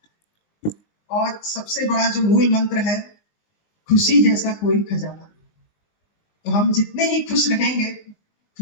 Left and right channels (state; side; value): late; right; 19 ms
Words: है। और सबसे बड़ा जो मूल मंत्र है, खुशी जैसा कोई खजाना। तो हम जितने ही खुश रहेंगे,